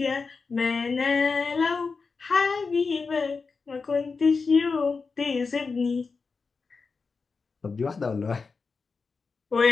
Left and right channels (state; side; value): quieter; right; 4.6 dB